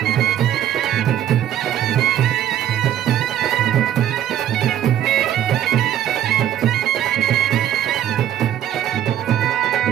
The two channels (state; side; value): quieter; left; 11.2 dB